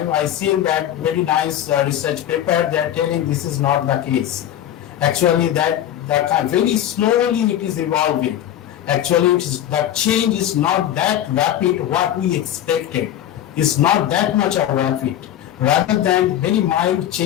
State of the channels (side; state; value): right; quieter; 11.5 dB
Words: I seen that very nice research paper. They are telling this is not the case. Actually, that very slowly it is evolving. Actually, the change is not that rapid. What we expected is not that much of rapid, rather than very mild